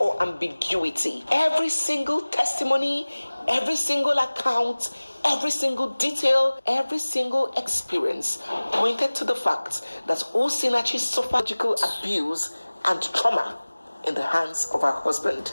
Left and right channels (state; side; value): inverted; both; correlation -1.00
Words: ambiguity. Every single testimony, every single account, every single detail, every single experience pointed to the fact that Osinachi suffered physical abuse and trauma in the hands of her husband,